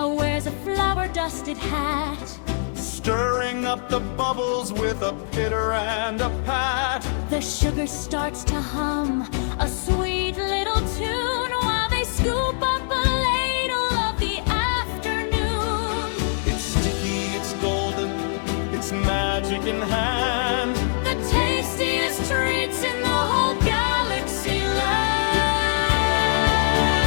wears a flower-dusted hat. stirring up the bubbles with a pitter and a pat. The sugar starts to hum a sweet little tune while they scoop up a ladle of the afternoon. It's sticky, it's golden, it's magic in hand. The tastiest treats in the whole galaxy land.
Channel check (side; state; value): right; silent; 63 dB below the other